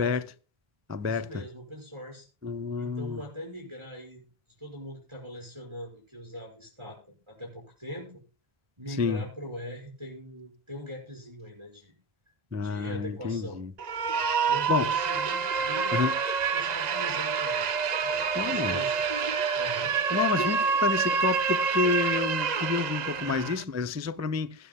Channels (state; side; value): late; left; 1.9 ms